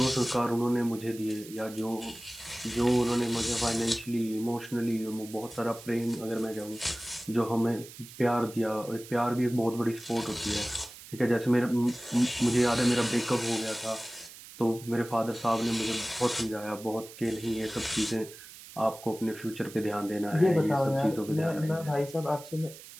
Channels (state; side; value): noise; right; hiss, 17 dB below the sound